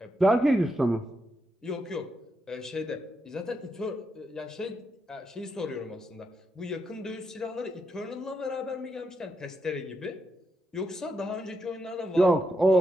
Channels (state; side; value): normal; both; correlation 0.83